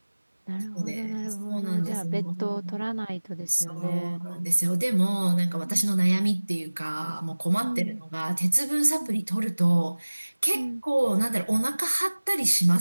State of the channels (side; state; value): both; inverted; correlation -1.00